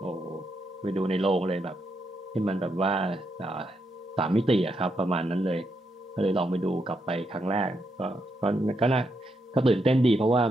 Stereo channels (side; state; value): both; normal; correlation 0.81